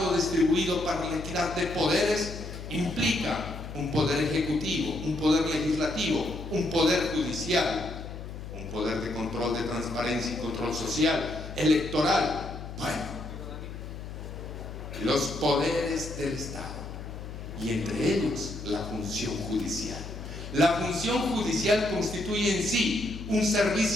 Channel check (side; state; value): left; noise; hum, 10 dB below the sound